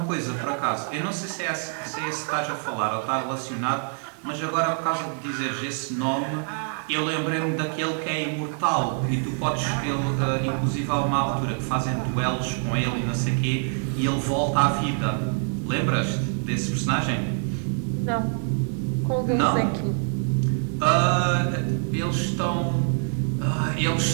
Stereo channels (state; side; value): silent; left; 56 dB below the other